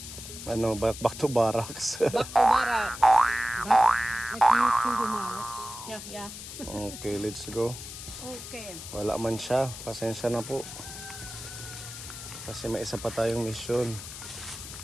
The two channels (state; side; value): noise; left; hiss, 11 dB below the sound